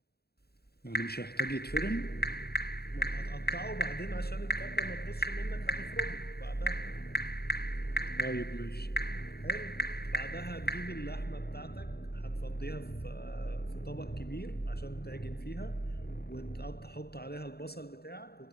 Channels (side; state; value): right; late; 0.46 ms